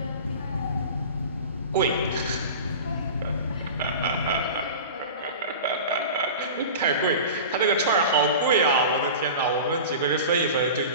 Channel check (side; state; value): both; inverted; correlation -0.34